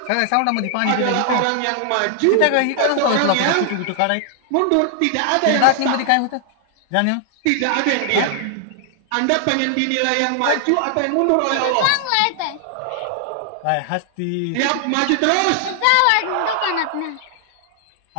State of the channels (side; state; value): both; different; correlation 0.00